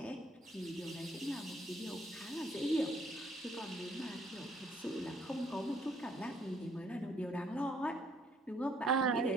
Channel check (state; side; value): normal; both; correlation 0.65